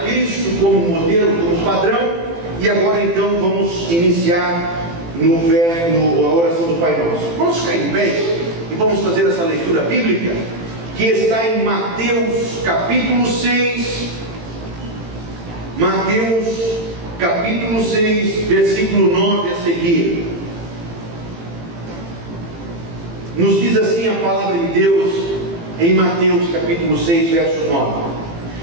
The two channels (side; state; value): left; late; 18 ms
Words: Cristo como modelo, como padrão, e agora então vamos iniciar a oração do Pai Nosso. Vamos ficar em pé e vamos fazer essa leitura bíblica que está em Mateus capítulo 6, Mateus capítulo 6, versículo 9 a seguir. Nos diz assim a palavra de Deus em Mateus capítulo 6, verso 9: